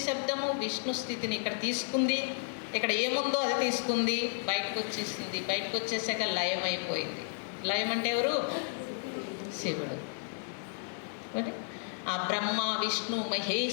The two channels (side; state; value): right; silent; digital silence